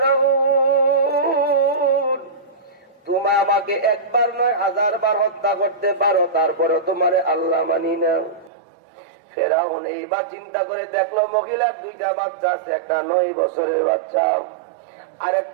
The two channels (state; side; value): drops out; left; at 8.5 s